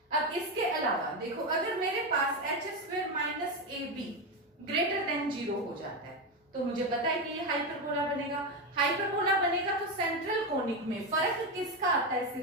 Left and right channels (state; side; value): normal; both; correlation 0.12